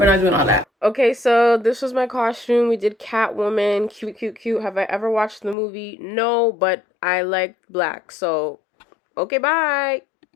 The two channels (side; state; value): right; drops out; at 5.6 s